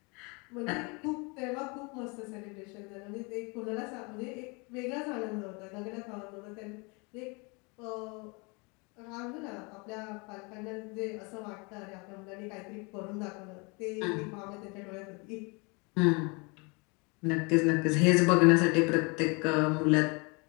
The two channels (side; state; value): right; quieter; 30.1 dB